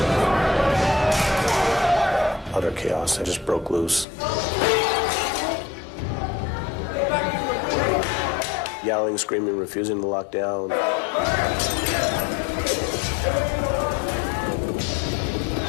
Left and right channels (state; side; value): drops out; right; at 4.0 s